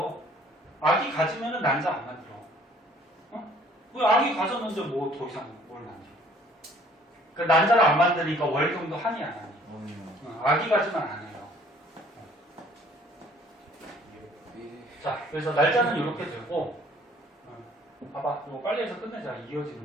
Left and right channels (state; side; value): normal; both; correlation 0.57